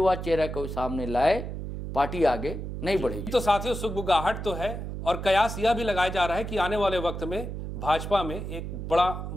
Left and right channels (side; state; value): right; noise; hum, 6 dB below the sound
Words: चेहरा को सामने लाए पार्टी आगे नहीं बढ़ेगी। तो साथियों सुगबुगाहट तो है और कयास यह भी लगाया जा रहा है कि आने वाले वक्त में भाजपा में एक बड़ा